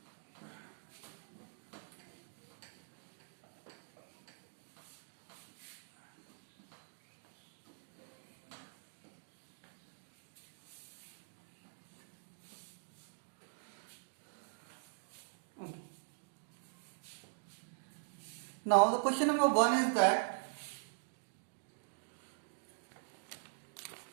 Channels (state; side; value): silent; left; digital silence